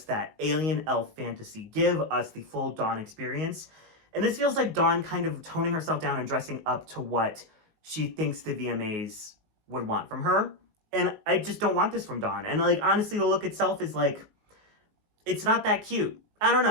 that alien elf fantasy. Give us the full Dawn experience. And this feels like Dawn kind of toning herself down and dressing up to what she thinks the VMAs would want from her. And I just don't want this from Dawn. And like, honestly, the look itself is like, it's not that cute. I don't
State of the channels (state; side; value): late; left; 19 ms